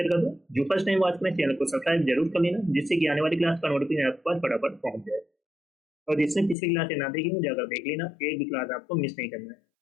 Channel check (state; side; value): drops out; right; at 6.6 s